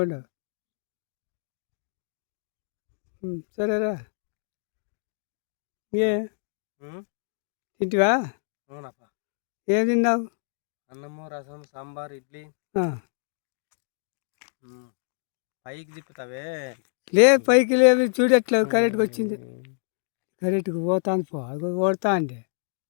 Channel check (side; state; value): right; silent; digital silence